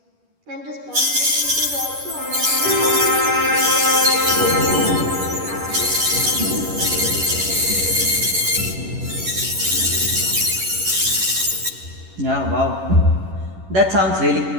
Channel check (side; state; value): left; late; 11 ms